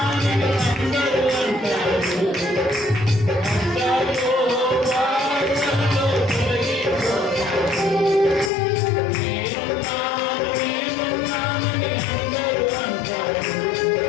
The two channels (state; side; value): drops out; right; at 8.5 s